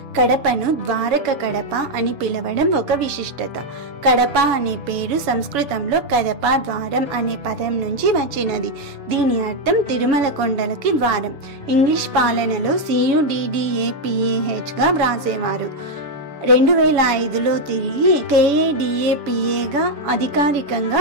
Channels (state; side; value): late; left; 7.0 ms